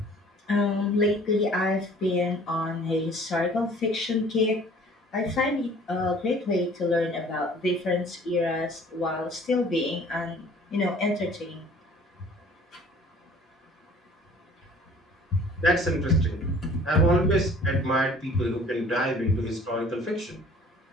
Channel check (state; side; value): normal; both; correlation 0.51